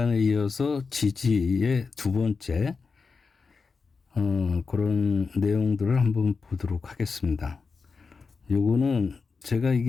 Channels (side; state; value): right; quieter; 4.8 dB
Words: 이어서 지지의 두 번째 그런 내용들을 한번 보도록 하겠습니다. 요거는 제가